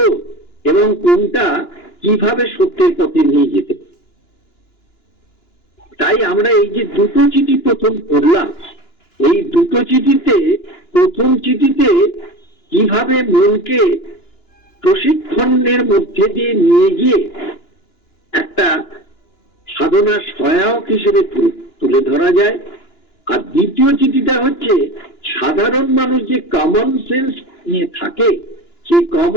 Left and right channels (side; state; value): right; late; 2.9 ms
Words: এবং কোনটা কিভাবে সত্যের পথে নিয়ে যেতে। তাই আমরা এই যে দুটো চিঠি প্রথম পড়লাম, এই দুটো চিঠিতে প্রথম চিঠিতে কিভাবে মনকে প্রশিক্ষণের মধ্যে দিয়ে নিয়ে গিয়ে একটা সাধনার সহায়ক হিসেবে তুলে ধরা যায়, আর দ্বিতীয় চিঠিটা হচ্ছে সাধারণ মানুষ যে কমন সেন্স নিয়ে থাকে, সেই